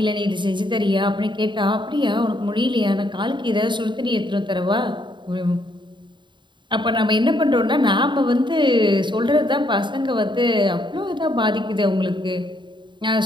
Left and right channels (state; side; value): late; left; 0.23 ms